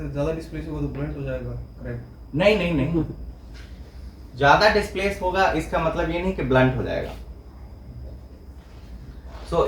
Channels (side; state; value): both; identical; correlation 1.00